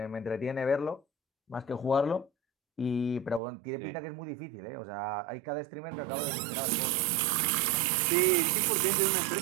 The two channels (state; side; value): drops out; left; at 3.4 s